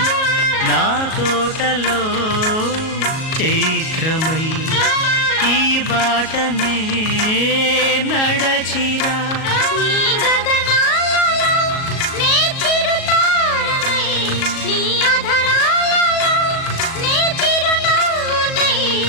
నా తోటలో చైత్రమై ఈ బాటనే నడచిరా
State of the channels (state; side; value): late; right; 37 ms